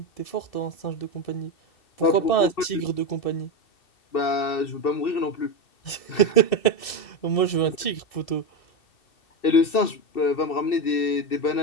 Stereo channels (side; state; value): right; late; 2.7 ms